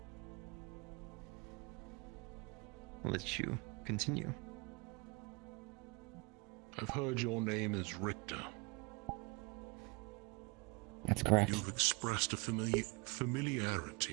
I'll let you continue. I've heard your name is Richter. That's correct. You've expressed a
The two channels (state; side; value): quieter; left; 28.2 dB